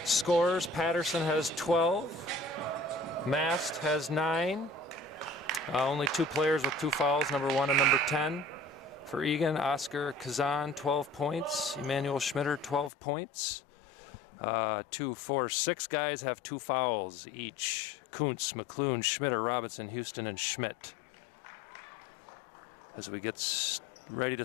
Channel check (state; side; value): drops out; right; at 12.9 s